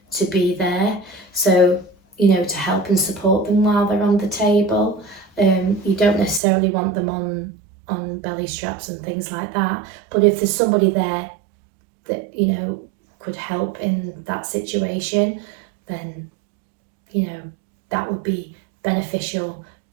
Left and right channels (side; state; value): left; drops out; at 6.4 s